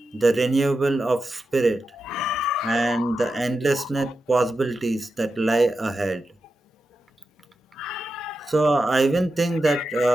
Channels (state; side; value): normal; both; correlation 0.90